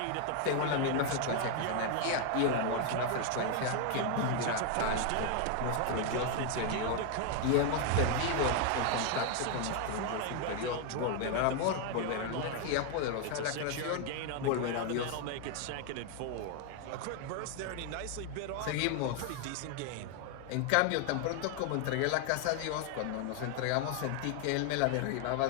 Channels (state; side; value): different; both; correlation 0.01